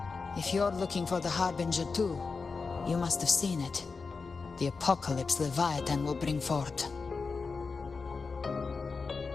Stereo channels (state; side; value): quieter; right; 4.6 dB